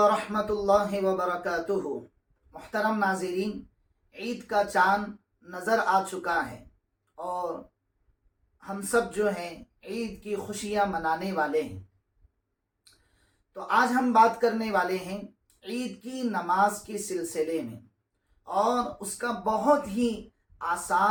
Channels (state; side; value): identical; both; correlation 1.00